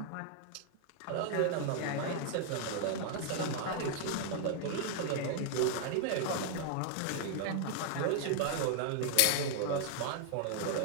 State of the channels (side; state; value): both; different; correlation 0.00